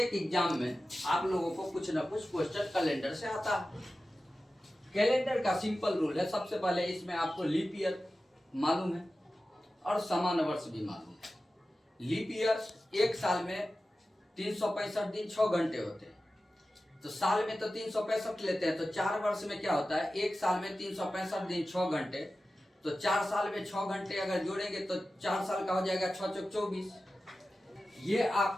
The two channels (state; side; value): normal; both; correlation 0.94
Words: एग्जाम में आप लोगों को कुछ ना कुछ क्वेश्चन कैलेंडर से आता है। कैलेंडर का सिंपल रूल है, सबसे पहले इसमें आपको लीप ईयर मालूम है और सामान्य वर्ष भी मालूम है। लीप ईयर एक साल में 365 दिन 6 घंटे होते हैं, तो साल में तो 365 लेते हैं, तो 4 वर्ष में क्या होता है, एक साल में 365 दिन 6 घंटे, तो 4 साल में 6 घंटे अगर जोड़ेंगे तो 4 साल का हो जाएगा 6 चौक 24। ये